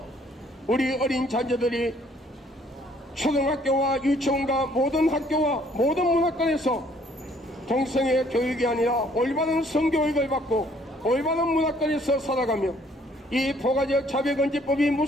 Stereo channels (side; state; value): both; normal; correlation 0.62